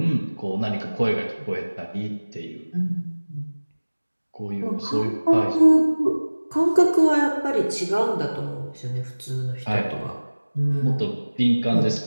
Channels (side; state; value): both; inverted; correlation -1.00